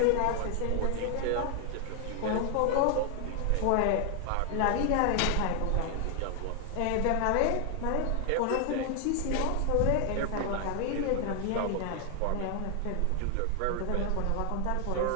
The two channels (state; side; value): different; both; correlation 0.00